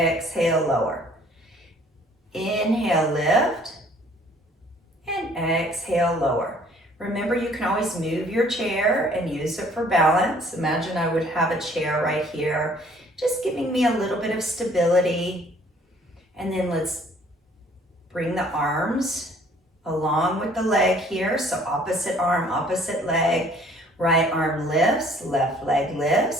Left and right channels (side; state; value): both; normal; correlation 0.57